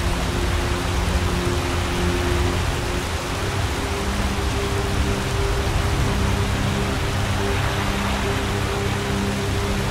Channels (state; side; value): identical; both; correlation 1.00